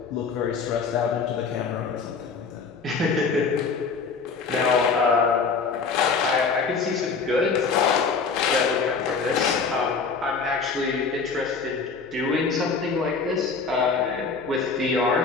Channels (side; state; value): right; quieter; 5.0 dB